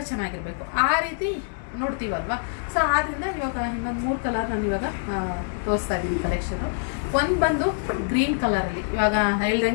ಚೆನ್ನಾಗಿರಬೇಕು. ಆ ರೀತಿ ನೋಡ್ತೀವಲ್ವಾ. ಸೊ ಆದ್ದರಿಂದ ಇವಾಗ ಇನ್ನೊಂದು 3 ಕಲರ್ ನಾನು ಇವಾಗ ತೋರಿಸ್ತಾ ಇದ್ದೀನಿ ಕಲೆಕ್ಷನು. ಒಂದು ಬಂದು ಗ್ರೀನ್ ಕಲರಲ್ಲಿ, ಇವಾಗ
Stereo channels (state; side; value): silent; right; digital silence